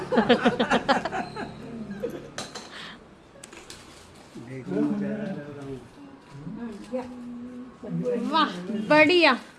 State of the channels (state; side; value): identical; both; correlation 1.00